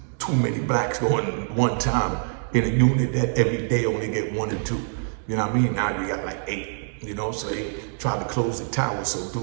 too many blacks going one time in a unit that every day only get 1 or 2. You know what I mean? Now you got like 8, so they tried to close the tower. So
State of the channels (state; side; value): silent; left; digital silence